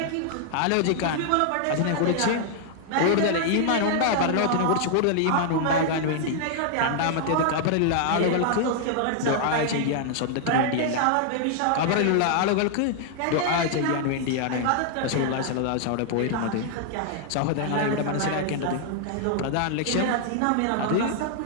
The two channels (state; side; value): different; both; correlation 0.00